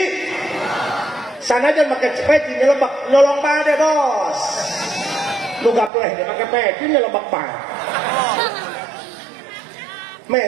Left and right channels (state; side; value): drops out; left; at 5.9 s